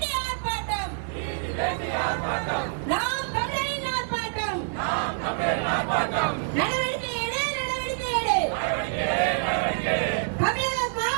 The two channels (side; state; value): left; silent; digital silence